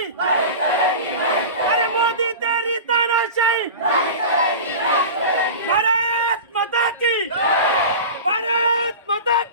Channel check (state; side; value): inverted; both; correlation -0.31